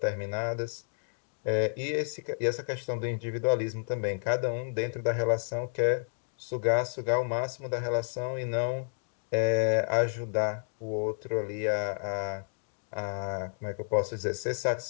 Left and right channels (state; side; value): silent; right; digital silence